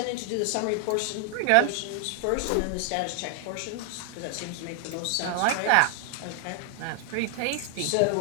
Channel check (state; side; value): different; both; correlation 0.00